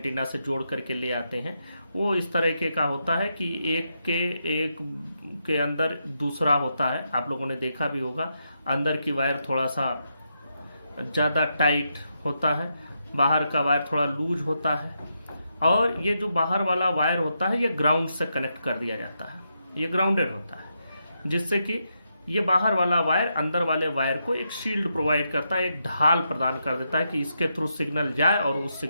से जोड़ करके ले आते हैं, वो इस तरीके का होता है कि एक के अंदर दूसरा होता है। आप लोगों ने देखा भी होगा, अंदर की वायर थोड़ा सा ज्यादा टाइट होता है, बाहर का वायर थोड़ा लूज होता है, और ये जो बाहर वाला वायर होता है ये ग्राउंड से कनेक्ट कर दिया जाता है, ये ग्राउंडेड होता है, जिससे कि ये बाहर वाला वायर अंदर वाले वायर को एक शील्ड प्रोवाइड करता है, एक ढाल प्रदान कर देता है कि इसके थ्रू सिग्नल जाए और उस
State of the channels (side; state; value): both; inverted; correlation -0.83